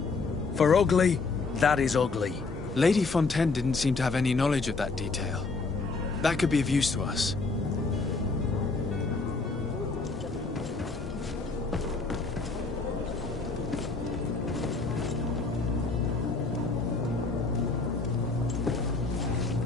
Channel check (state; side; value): quieter; right; 4.0 dB